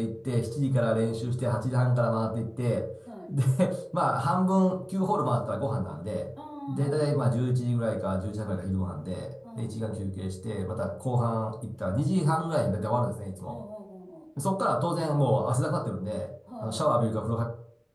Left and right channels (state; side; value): identical; both; correlation 1.00